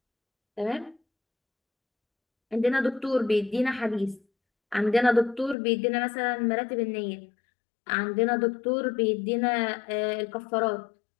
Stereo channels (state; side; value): drops out; right; at 5.6 s